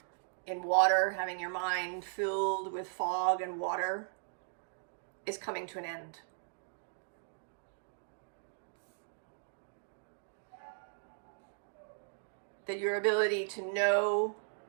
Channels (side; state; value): left; silent; digital silence